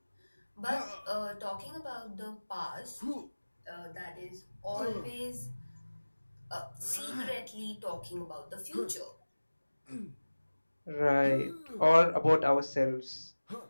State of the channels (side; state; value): both; inverted; correlation -1.00